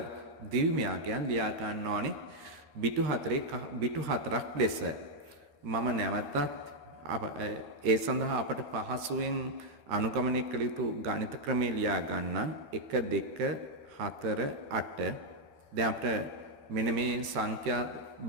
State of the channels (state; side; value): late; left; 13 ms